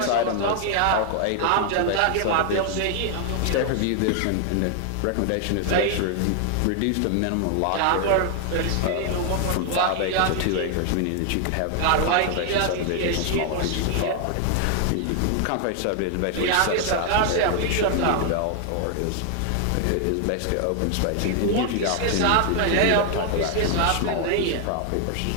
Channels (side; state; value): both; different; correlation 0.00